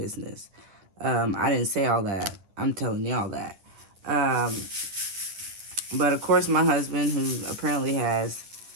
I didn't say all that. I'm telling y'all that. But of course, my husband, who apparently has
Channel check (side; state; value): left; late; 10 ms